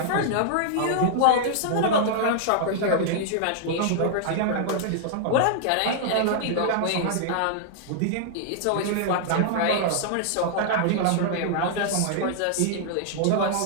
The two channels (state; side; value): different; both; correlation -0.01